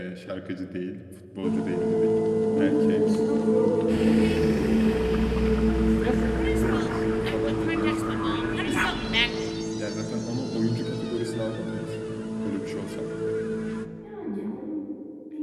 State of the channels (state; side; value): identical; both; correlation 1.00